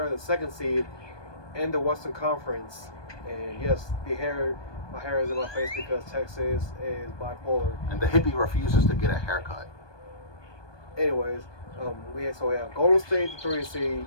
the second seed in the Western Conference. And yes, my hair is in my face because Texas is bipolar. And the hippie refuses to get a haircut. Anyways, we have Golden State, the 3 seed,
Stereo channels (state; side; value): late; right; 1.2 ms